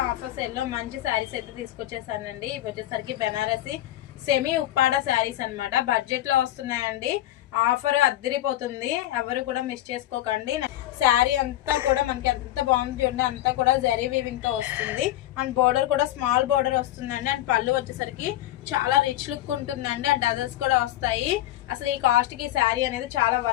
offer sale లో మంచి సారీస్ అయితే తీసుకొచ్చేసానండి. ఇవి వచ్చేసరికి బెనారసి సెమీ ఉప్పాడ సారీస్ అన్నమాట. బడ్జెట్ లో వస్తున్నాయండి. ఆఫర్ అద్దరిపోతుంది, ఎవరు కూడా మిస్ చేసుకోకండి. శారీ అంతా కూడా మనకి ఎంత బాగుంది చూడండి, అంతా కూడా జరీ వీవింగ్ తో వస్తుంది. అండ్ బోర్డర్ కూడా స్మాల్ బోర్డర్ వస్తుందండి. అండ్ పళ్ళు వచ్చేసరికి చాలా రిచ్ లుక్ ఉంటుందండి. అండ్ డజల్స్ కూడా వస్తాయి. అసలు ఈ కాస్ట్ కి ఈ శారీ అనేది చాలా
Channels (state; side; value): quieter; right; 14.3 dB